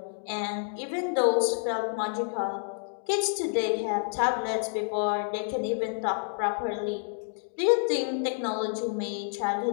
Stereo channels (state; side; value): silent; right; digital silence